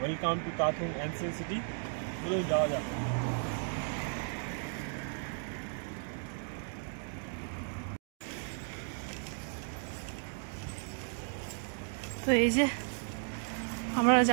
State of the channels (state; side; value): silent; left; 55 dB below the other